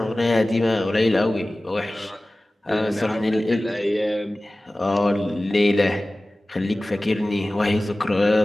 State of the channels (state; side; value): normal; both; correlation 0.97